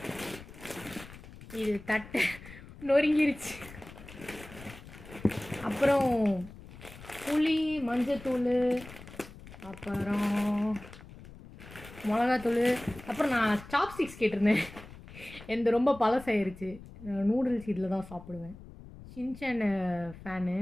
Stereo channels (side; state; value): left; noise; rumble, 17 dB below the sound